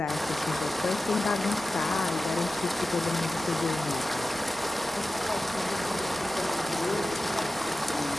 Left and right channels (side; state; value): right; noise; rumble, 21 dB below the sound